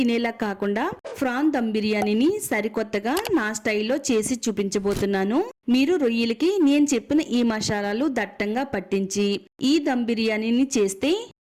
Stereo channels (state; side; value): identical; both; correlation 1.00